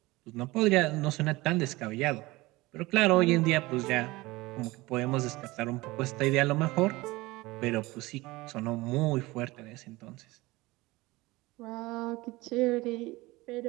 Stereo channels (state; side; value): quieter; left; 20.9 dB